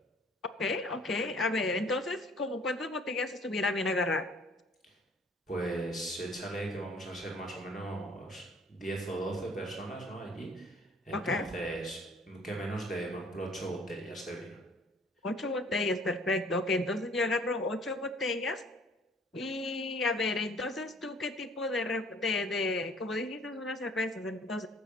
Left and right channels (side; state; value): both; normal; correlation 0.55